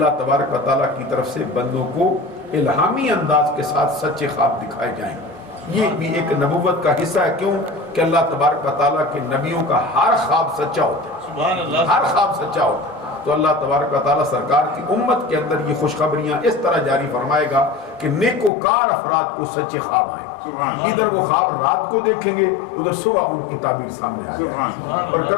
تبارک و تعالیٰ کی طرف سے بندوں کو الہامی انداز کے ساتھ سچے خواب دکھائے جائیں. یہ بھی ایک نبوت کا حصہ ہے. کیوں کہ اللہ تبارک و تعالیٰ کے نبیوں کا ہر خواب سچا ہوتا ہے، ہر خواب سچا ہوتا ہے. تو اللہ تبارک و تعالیٰ سرکار کی امت کے اندر یہ خوشخبریاں اس طرح جاری فرمائے گا کہ نیکوکار افراد کو سچے خواب آئیں. ادھر وہ خواب رات کو دیکھیں گے، ادھر صبح ان کی تعبیر سامنے آ جائے گی. اور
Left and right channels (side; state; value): right; drops out; at 18.5 s